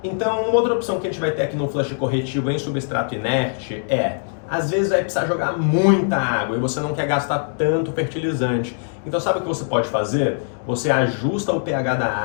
Então, uma outra opção que a gente vai ter aqui no flush corretivo em substrato inerte às vezes vai precisar jogar muita água e você não quer gastar tanto fertilizante. Então sabe o que você pode fazer? Você ajusta o pH da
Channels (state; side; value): silent; right; digital silence